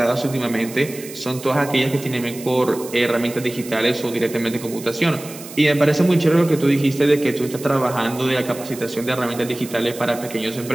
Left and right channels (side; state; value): right; noise; hiss, 15 dB below the sound